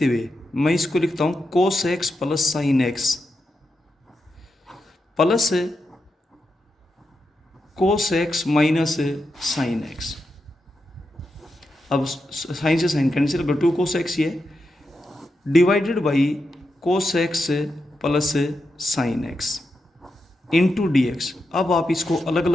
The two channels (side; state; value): both; normal; correlation 0.87